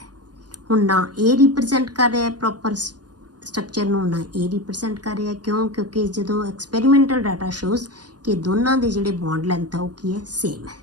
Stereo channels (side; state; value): left; late; 0.69 ms